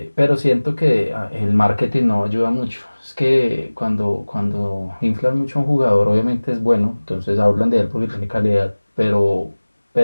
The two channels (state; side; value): inverted; both; correlation -1.00